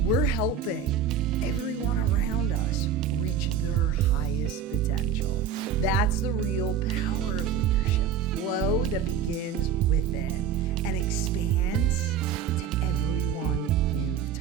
we're helping everyone around us reach their highest potential. That's the real power of leadership. Flow that begins within and expands to everyone you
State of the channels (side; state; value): left; quieter; 7.2 dB